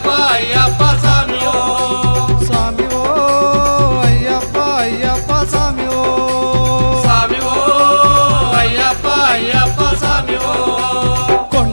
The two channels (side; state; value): both; inverted; correlation -1.00